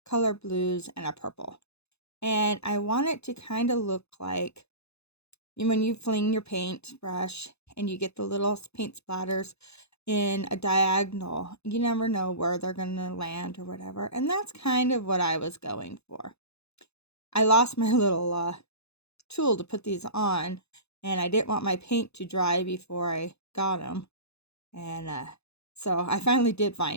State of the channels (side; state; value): right; late; 0.79 ms